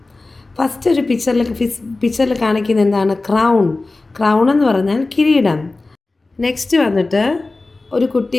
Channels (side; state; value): right; quieter; 3.3 dB